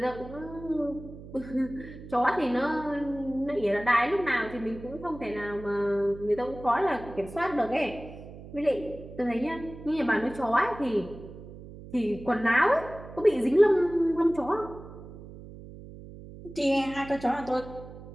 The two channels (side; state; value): right; noise; hum, 15 dB below the sound